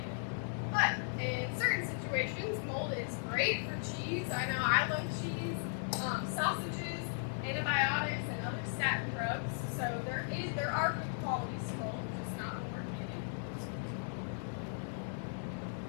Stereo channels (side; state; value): right; silent; digital silence